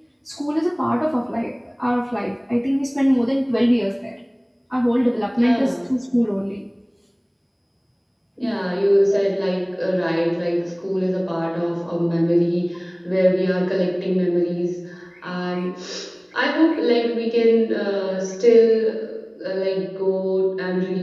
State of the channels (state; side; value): identical; both; correlation 1.00